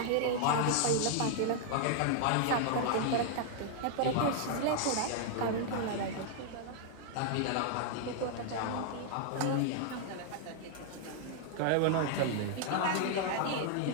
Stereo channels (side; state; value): both; different; correlation 0.00